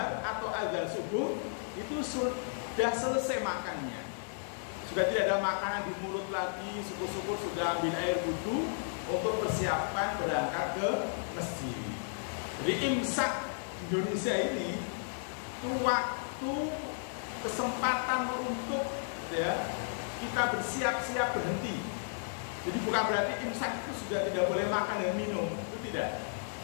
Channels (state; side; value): silent; right; digital silence